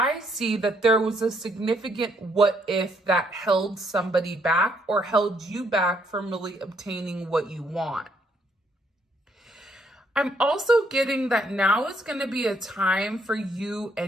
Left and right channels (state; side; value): normal; both; correlation 0.70